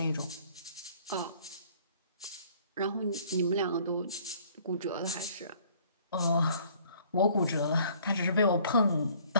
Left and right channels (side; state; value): both; inverted; correlation -0.57